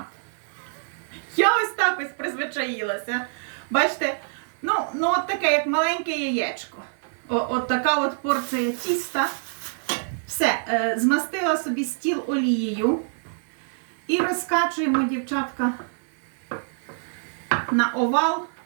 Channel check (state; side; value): silent; left; digital silence